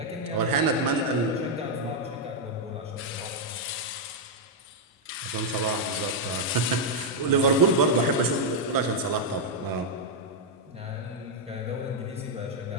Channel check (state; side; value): normal; both; correlation -0.02